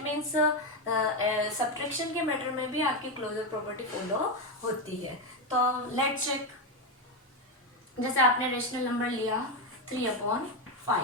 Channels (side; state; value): both; normal; correlation 0.09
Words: मीन्स सब्ट्रैक्शन के मैटर में भी आपकी क्लोजर प्रॉपर्टी फॉलो होती है। तो लेट्स चेक। जैसे आपने रेशनल नंबर लिया